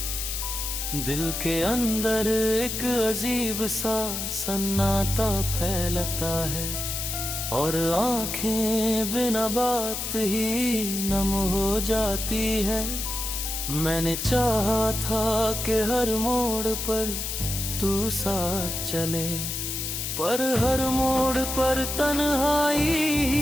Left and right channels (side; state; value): left; noise; hiss, 3 dB below the sound